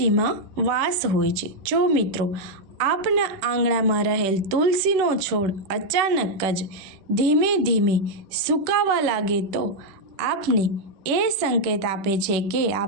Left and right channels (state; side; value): late; left; 10 ms